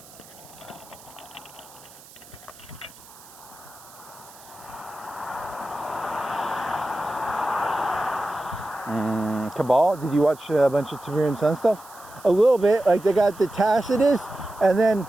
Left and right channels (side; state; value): right; noise; hiss, 21 dB below the sound